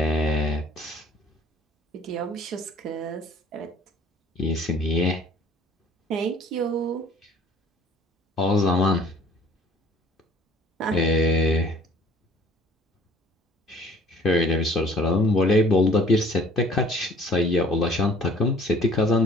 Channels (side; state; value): both; normal; correlation 0.53